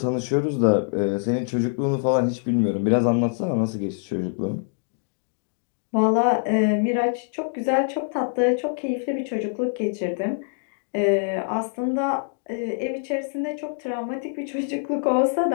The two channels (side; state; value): right; silent; digital silence